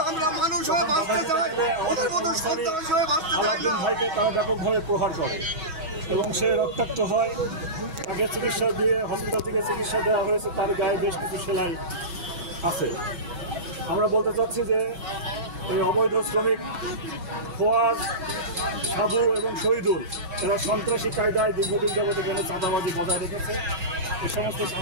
আমাদের কর্মচারী আলাউদ্দিন ভাইকে তারা ব্যাপকভাবে প্রহার করে এবং সে রক্তাক্ত হয়। তাকে চিকিৎসা দিয়ে হসপিটাল থেকে চিকিৎসা দেওয়া হয়েছে, তার গায়ে বেশ কিছু সেলাই আছে। আমরা বলতে চাচ্ছি যে এই অবৈধ শ্রমিক ফোয়াদ, সাবু এবং শহীদুল এরা সন্ত্রাসী কায়দায় দীর্ঘদিন যাবত এখানে চাঁদাবাজি বজায় রেখেছে। এই সমস্ত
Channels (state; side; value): late; left; 6.2 ms